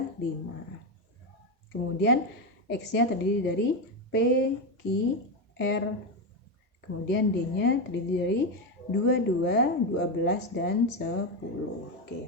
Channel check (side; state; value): both; normal; correlation 0.11